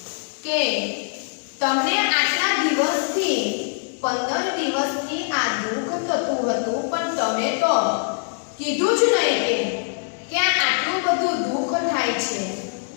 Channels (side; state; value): right; silent; digital silence